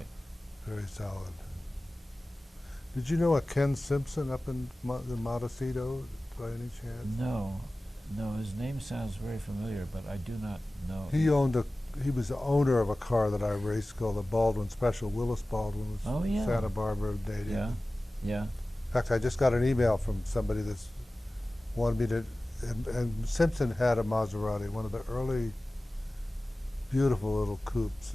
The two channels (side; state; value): both; normal; correlation 0.97